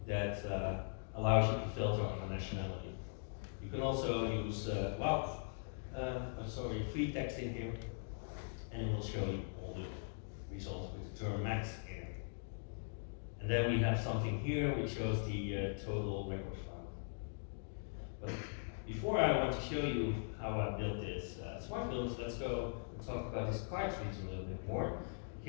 that allows you to filter on a nationality. You can also use free text in here, and it will show you all the results with the term max in it. And then we have something here which shows the total records found. But before I want to show you how I built this smart filters, let's go and talk about this cards region a little bit more,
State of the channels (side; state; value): right; silent; digital silence